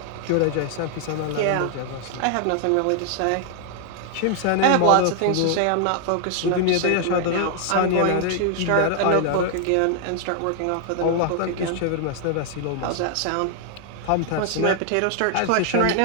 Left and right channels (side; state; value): both; different; correlation 0.00